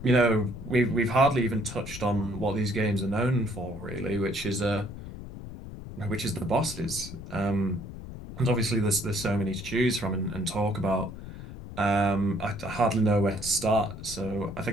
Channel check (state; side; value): noise; left; rumble, 11 dB below the sound